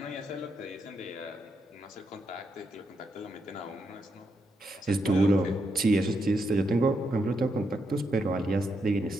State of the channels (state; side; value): normal; both; correlation 0.81